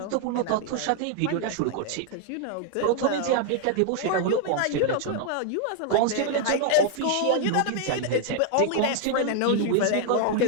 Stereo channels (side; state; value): both; different; correlation 0.00